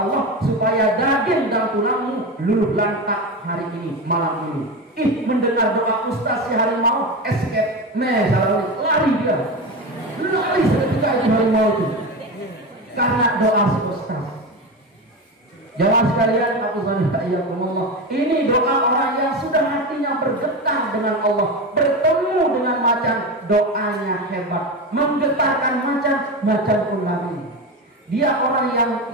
Allah supaya daging dan tulangmu luluh lantak hari ini, malam ini. Mendengar doa ustaz si harimau, escape, lari dia, lari seketika itu harimau itu, karena doa si ustaz. Jamaah sekalian, ini doa orang yang sudah hatinya bergetar dengan Allah, bertemu dengan macan, doanya hebat, menggetarkan macan pun lari. Dia orang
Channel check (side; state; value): both; normal; correlation 0.21